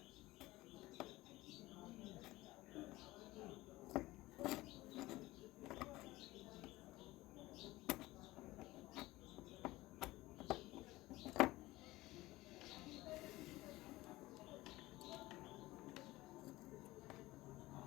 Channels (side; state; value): right; quieter; 18.7 dB